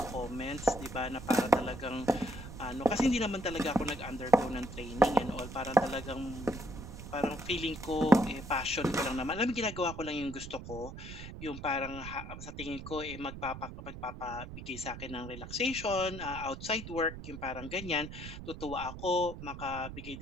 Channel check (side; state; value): right; noise; rumble, 11 dB below the sound